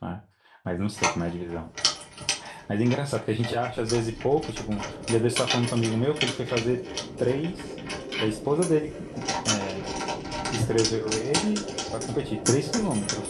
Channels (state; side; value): identical; both; correlation 1.00